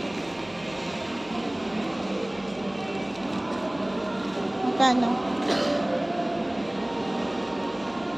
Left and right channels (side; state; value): right; noise; hum, 26 dB below the sound